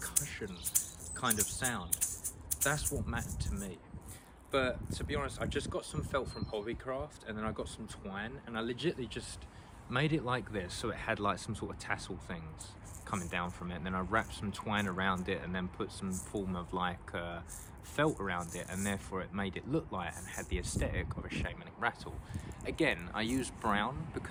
kind of sound. That's what mattered to me. But to be honest, I just got some felt from Hobbycraft, and then I got some twine, and I legitimately just made it like this, so it had like some sort of tassel things coming down from it, and then I wrapped some twine around it and then put some form of like felt around it, and therefore it made it look like and had the aesthetic of a shamanic rattle. Again, I used brown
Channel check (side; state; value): both; identical; correlation 1.00